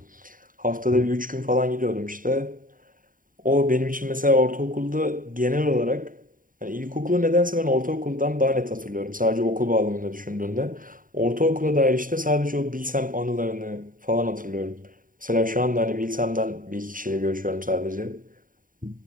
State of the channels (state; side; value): late; left; 0.40 ms